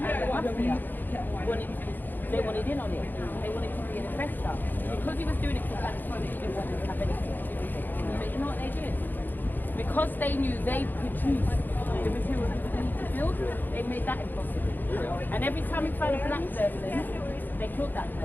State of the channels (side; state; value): right; late; 0.089 ms